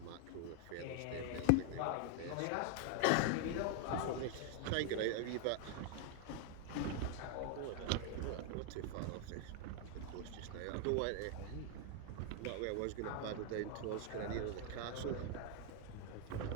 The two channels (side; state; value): both; different; correlation 0.00